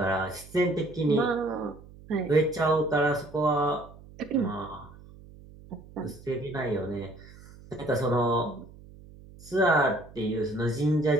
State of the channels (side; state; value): right; noise; hum, 20 dB below the sound